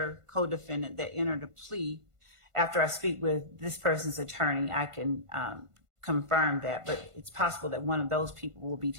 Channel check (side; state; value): left; late; 1.5 ms